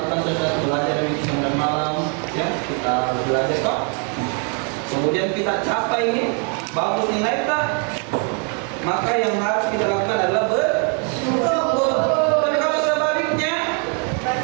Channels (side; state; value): left; quieter; 38.8 dB